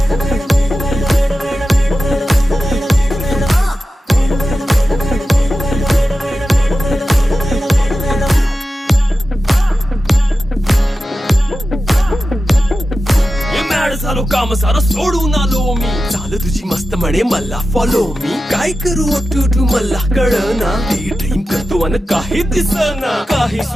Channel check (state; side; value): normal; both; correlation 0.93